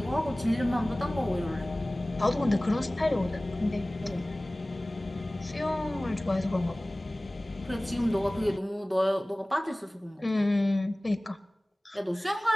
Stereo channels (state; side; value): normal; both; correlation 0.98